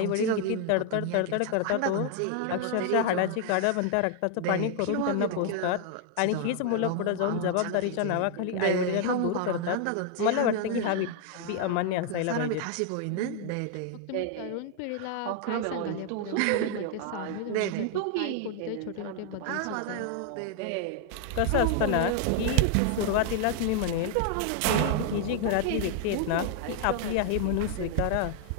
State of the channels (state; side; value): different; both; correlation 0.00